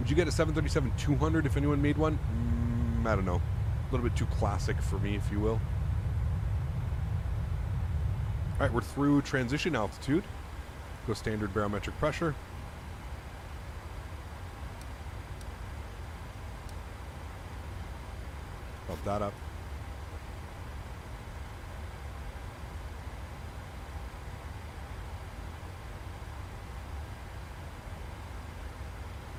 you get a 737-200 if anyone made one? I don't know. A little bit too classic for me, if you will. All right, we're through transition altitude. Go standard barometric pressure. Bump that up.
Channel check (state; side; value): identical; both; correlation 1.00